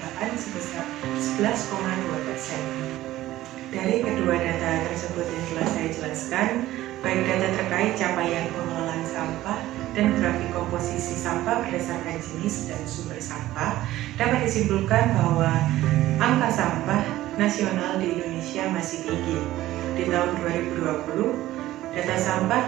sebesar 11,2%. Dari kedua data tersebut yang telah saya jelaskan, baik data terkait capaian pengelolaan sampah dan grafik komposisi sampah berdasarkan jenis dan sumber sampah, dapat disimpulkan bahwa angka sampah nasional di sampah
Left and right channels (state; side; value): quieter; left; 15.3 dB